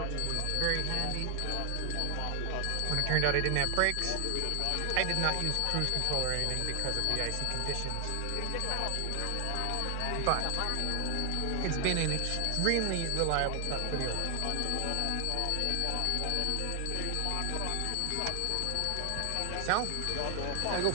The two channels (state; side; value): different; both; correlation 0.00